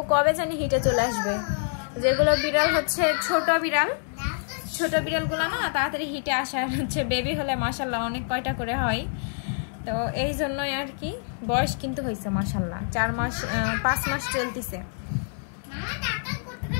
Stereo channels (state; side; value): silent; right; 61 dB below the other